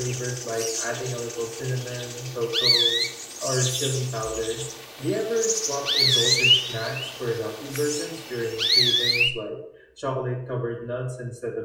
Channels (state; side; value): identical; both; correlation 1.00